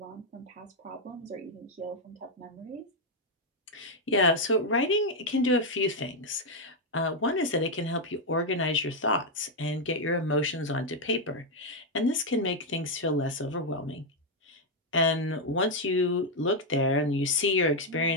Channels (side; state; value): both; normal; correlation 0.01